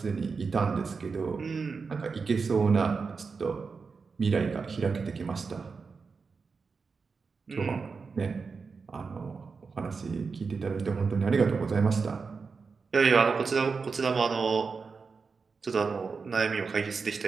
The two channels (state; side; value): quieter; left; 4.9 dB